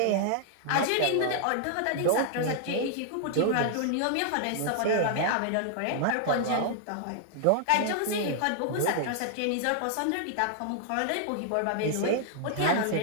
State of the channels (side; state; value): both; different; correlation -0.01